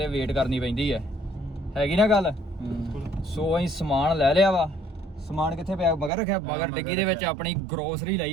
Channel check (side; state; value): left; drops out; at 6.1 s